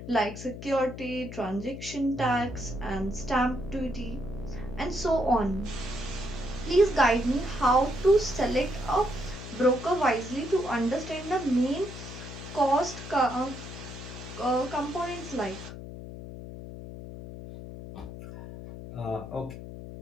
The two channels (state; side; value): noise; left; hum, 11 dB below the sound